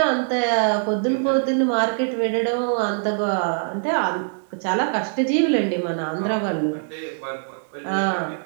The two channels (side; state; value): left; silent; digital silence